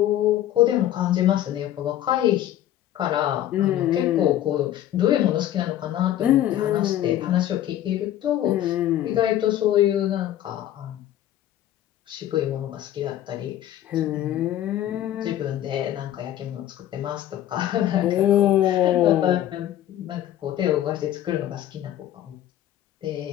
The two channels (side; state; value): right; quieter; 12.4 dB